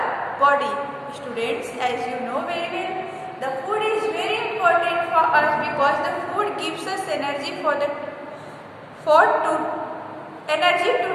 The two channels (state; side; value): identical; both; correlation 1.00